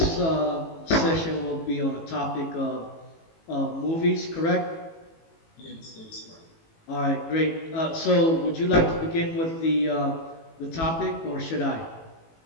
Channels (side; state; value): right; late; 18 ms